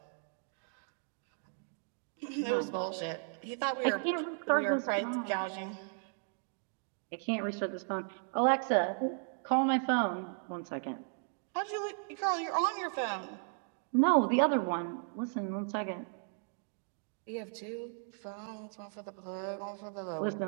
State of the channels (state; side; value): silent; left; 54 dB below the other